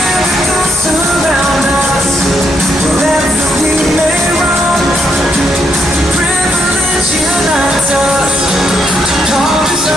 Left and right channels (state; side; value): normal; both; correlation 0.76